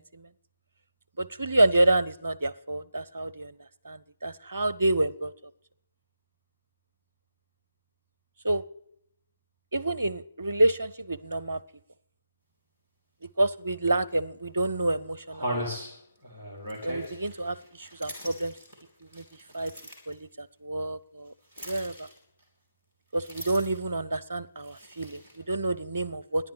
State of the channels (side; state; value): both; inverted; correlation -0.91